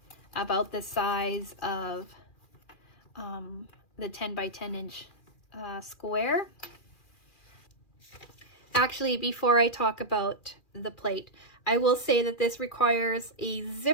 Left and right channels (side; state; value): right; late; 2.4 ms